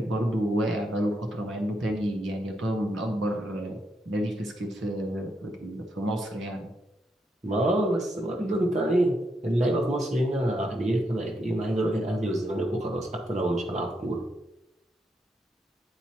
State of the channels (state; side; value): normal; both; correlation 0.80